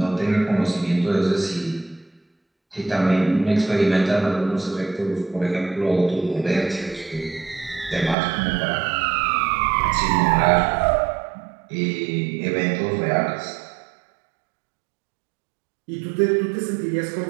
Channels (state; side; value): drops out; left; at 8.2 s